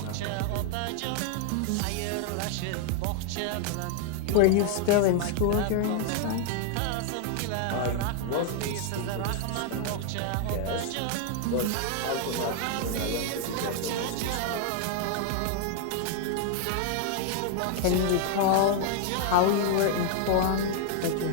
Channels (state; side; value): different; both; correlation 0.00